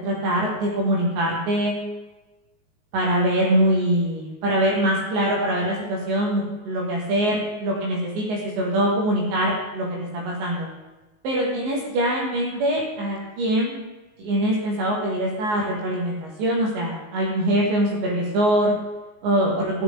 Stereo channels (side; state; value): left; late; 19 ms